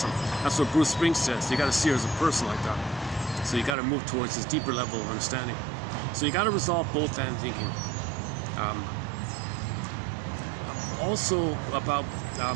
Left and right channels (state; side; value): drops out; left; at 3.8 s